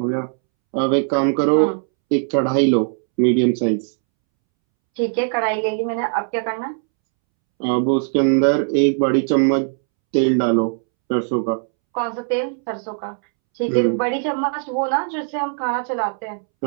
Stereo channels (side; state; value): left; silent; 66 dB below the other